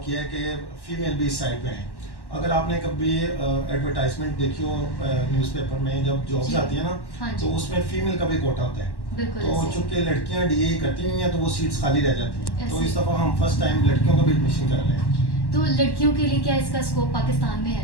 किया है कि फीमेल भी इस साइड पे हैं। अगर आपने कभी एडवर्टाइजमेंट देखी हो न्यूज़पेपर में, जब जॉब्स आती है ना, तो उसमें फीमेल का भी कोटा होता है। तो चूंकि लड़कियां डीए करती नहीं है तो वो सीट्स खाली रह जाती हैं। तो इस दफ़ा हम फर्स्ट टाइम लड़कियों का भी एडमिशन कर रहे हैं। तो लड़कियों के लिए क्या इसका स्कोप पाकिस्तान में है?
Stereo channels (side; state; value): right; late; 1.1 ms